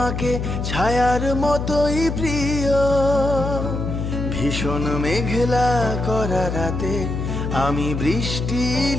ছায়ার মতোই প্রিয়। ভীষণ মেঘলা করা রাতে আমি বৃষ্টি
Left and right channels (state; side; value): noise; left; hum, 3 dB below the sound